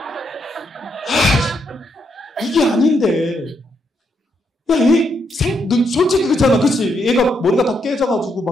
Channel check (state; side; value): normal; both; correlation 0.78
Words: 이게 아닌데. 야, 솔직히 그렇잖아. 그치? 얘가 머리가 다 깨져가지고